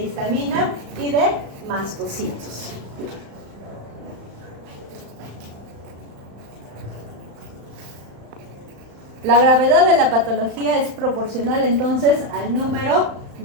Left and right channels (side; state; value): left; late; 35 ms